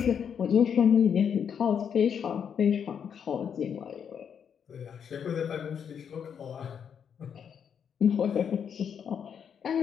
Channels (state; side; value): quieter; right; 7.7 dB